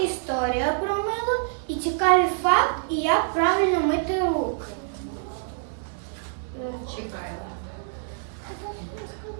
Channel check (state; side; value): silent; left; 61 dB below the other